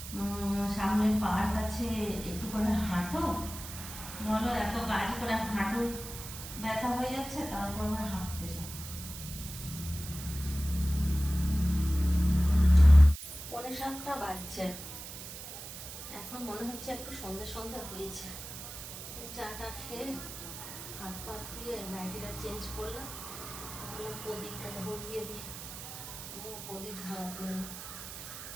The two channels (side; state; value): right; noise; hiss, 10 dB below the sound